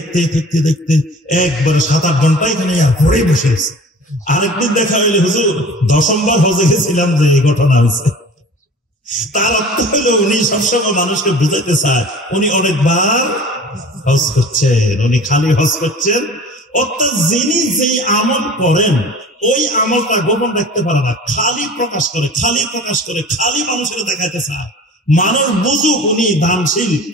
একবারে 7-8 ঘন্টা এখানে ঘরে বসে গেছে। আরেকদিন দেখা হইলে, হুজুর 10ম বার হজে গেছিলাম যে এই ঘটনা হয়েছে। তার অর্থ হইল উনি সবসময় মানুষকে বুঝাইতে চায় উনি অনেকবার হজ করছেন, উনি খালি হজ করছেন। অর্থাৎ যিনি যেই আমল করেন ওই আমলটা গোপন রাখতে পারে না, খালি প্রকাশ করে, খালি মানুষের দেখাইতে চায়। মানুষ বুঝুক উনি দানশীল,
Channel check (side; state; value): both; normal; correlation 0.42